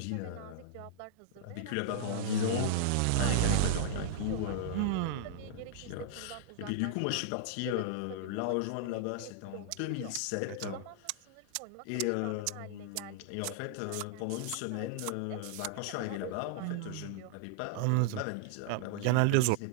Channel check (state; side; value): different; both; correlation -0.01